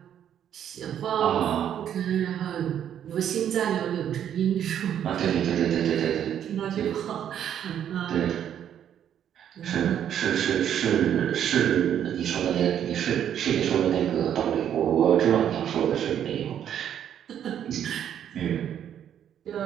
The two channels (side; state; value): left; quieter; 9.7 dB